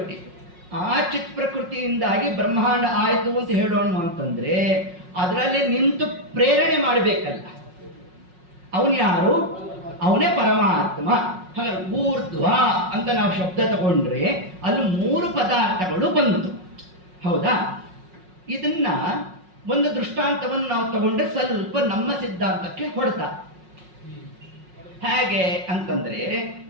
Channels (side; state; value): left; late; 5.5 ms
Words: ಆ ಚಿತ್ ಪ್ರಕೃತಿಯಿಂದಾಗಿ ಬ್ರಹ್ಮಾಂಡ ಆಯಿತು ಅಂತ ಹೇಳೋಣ ಅಂತಂದ್ರೆ ಅದರಲ್ಲಿ ನಿಂತು ಪ್ರೇರಣೆ ಮಾಡಬೇಕಲ್ಲ. ಅವನು ಯಾರು? ಅವನೇ ಪರಮಾತ್ಮ. ಹಾಗಾದ್ರೆ ಊರ್ಧ್ವ ಅಂತ ನಾವು ಶಬ್ದ ತಗೊಂಡ್ರೆ ಅಲ್ಲಿ ಮೂರು ಪದಾರ್ಥಗಳು ಬಂತು. ಹೌದಾ? ಇದನ್ನ ಒಂದು ದೃಷ್ಟಾಂತವನ್ನು ನಾವು ತಗೊಂಡ್ರೆ ಸ್ವಲ್ಪ ನಮ್ಮ ಸಿದ್ಧಾಂತಕ್ಕೆ ಹೊಡೆತ. ಹೇಗೆ ಅಂತಂದ್ರೆ